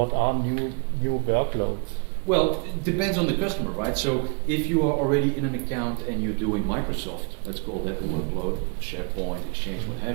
are new workloads? Well, it depends on the customer, right? So if you are already in an account and you're doing Microsoft, let's call that a workload, SharePoint, Exchange, what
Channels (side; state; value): left; quieter; 33.8 dB